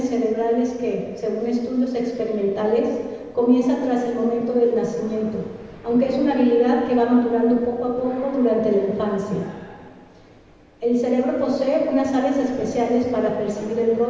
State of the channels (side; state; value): both; identical; correlation 1.00